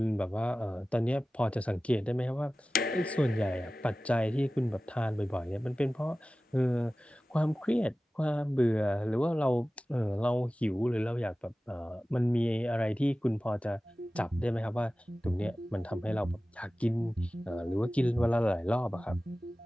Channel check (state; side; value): normal; both; correlation 0.96